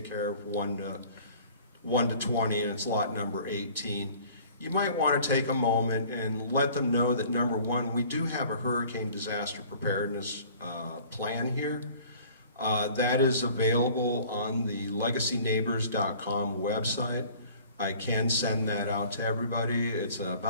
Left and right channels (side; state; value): both; inverted; correlation -0.50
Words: care of, 1 to 20, and it's lot number 18, you might want to take a moment and let them know that, number one, we do have a hurricane disaster preparedness plan here. That is available on the legacyneighbors.com website. I can send that out to everybody. It's